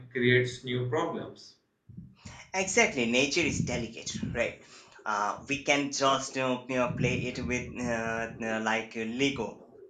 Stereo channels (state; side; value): identical; both; correlation 1.00